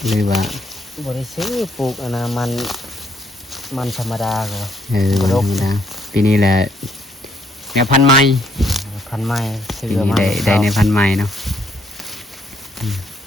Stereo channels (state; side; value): normal; both; correlation 0.69